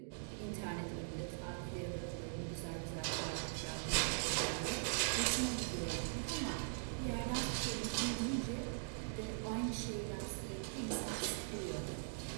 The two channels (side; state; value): left; silent; digital silence